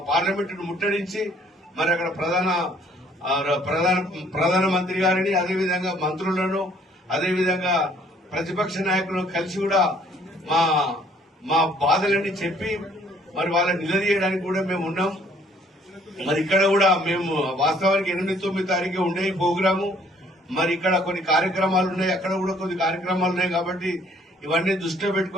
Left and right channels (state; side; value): normal; both; correlation 0.61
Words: పార్లమెంటును ముట్టడించి మరి అక్కడ ప్రధానమంత్రి గారిని, అదేవిధంగా మంత్రులను, అదేవిధంగా ప్రతిపక్ష నాయకులను కలిసి కూడా మా బాధలన్నీ చెప్పి మరి వాళ్ళని నిలదీయడానికి కూడా మేము ఉన్నాం. మరి ఇక్కడ కూడా మేము వాస్తవానికి 8, 9 తారీఖు ఉండే ఈ ప్రోగ్రాము. మరి ఇక్కడ కొన్ని కార్యక్రమాలు ఉన్నాయి, అక్కడ కూడా కొన్ని కార్యక్రమాలు ఉన్నాయి. కాబట్టి ఇవన్నీ దృష్టిలో